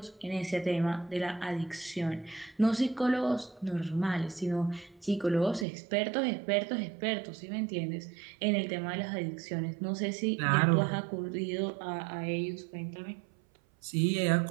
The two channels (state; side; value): drops out; left; at 5.7 s